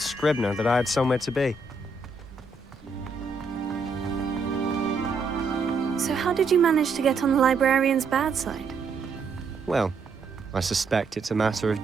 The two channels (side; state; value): left; quieter; 4.1 dB